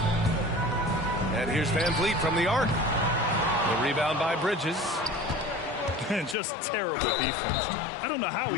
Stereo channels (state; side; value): drops out; right; at 6.4 s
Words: And here's Van Vliet from the arc. The rebound by Bridges. Just terrible defense. I don't know how